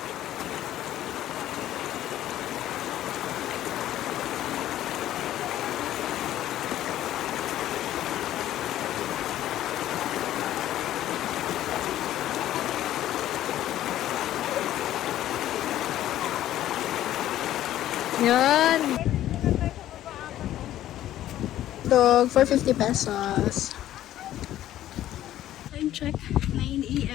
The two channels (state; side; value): quieter; right; 13.0 dB